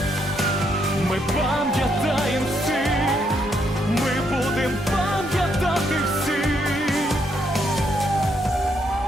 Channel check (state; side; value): normal; both; correlation 0.75